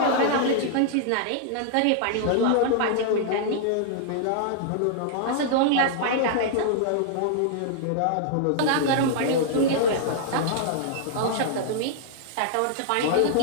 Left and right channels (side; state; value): both; different; correlation -0.01